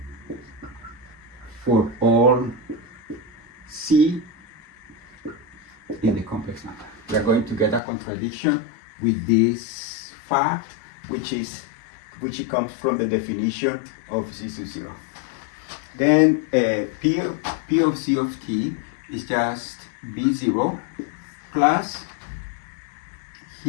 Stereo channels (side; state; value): right; drops out; at 7.8 s